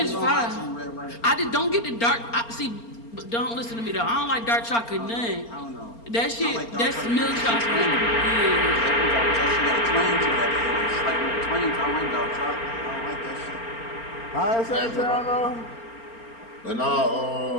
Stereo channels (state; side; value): late; right; 4.4 ms